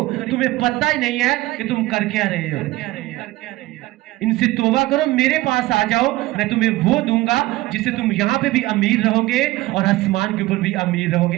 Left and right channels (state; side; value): quieter; left; 18.4 dB